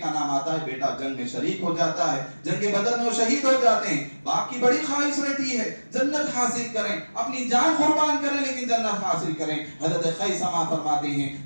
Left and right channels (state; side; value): inverted; both; correlation -1.00